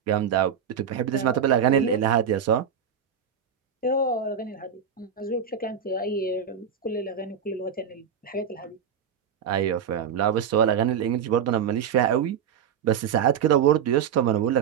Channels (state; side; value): quieter; left; 7.7 dB